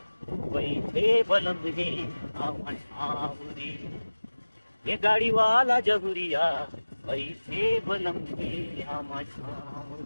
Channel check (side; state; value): both; inverted; correlation -1.00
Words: बैठे बलम रे आवन रे ये गाड़ी वाला जहुरिया बैठे बलम रे आवन